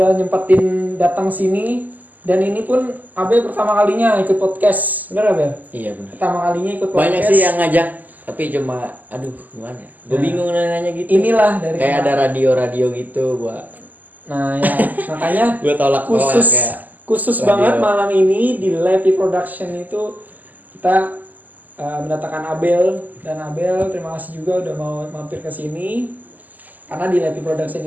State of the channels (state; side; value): late; left; 0.082 ms